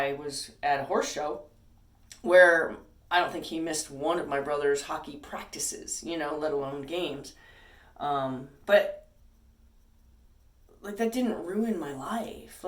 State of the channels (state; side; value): identical; both; correlation 1.00